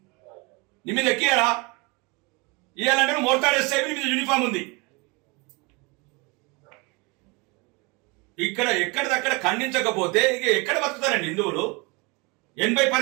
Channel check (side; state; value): left; quieter; 27.9 dB